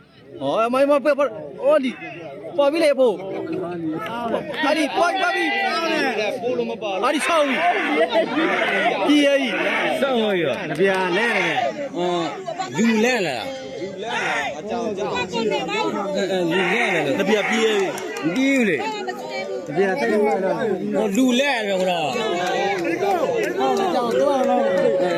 哦，妈妈不，哦你，包比来包，阿你包比， ပို့လို့မပါ 阿你操你，第二， စောင်းရနပြာလဲတယ်လူလဲလာ အကြောင်းကြောင်း လူလဲလာ 那边第二， ဒီလေ 那边再来了， ဟောလူလဲတယ်ခေါ်တော့ 讲多了，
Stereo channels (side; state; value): both; identical; correlation 1.00